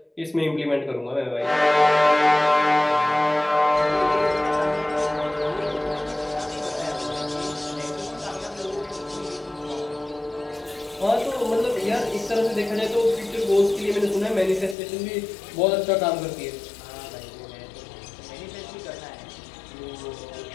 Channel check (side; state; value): right; drops out; at 14.8 s